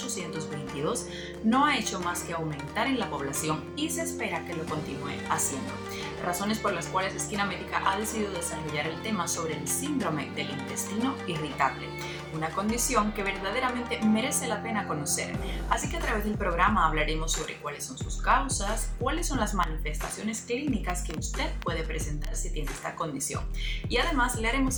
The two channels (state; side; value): identical; both; correlation 1.00